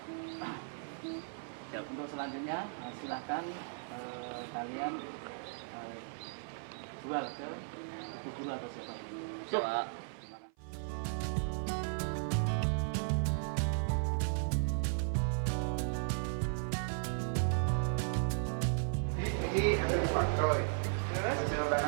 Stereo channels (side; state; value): left; silent; 54 dB below the other